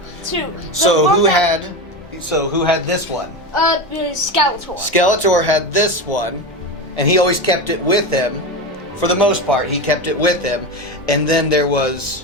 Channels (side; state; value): both; normal; correlation 0.20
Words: So who had this one? Skeletor. Skeletor had this one, and he always kept it with him. For the most part, he kept it with him. And then there